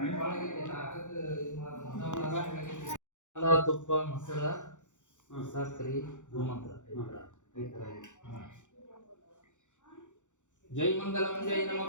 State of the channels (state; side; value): late; right; 0.85 ms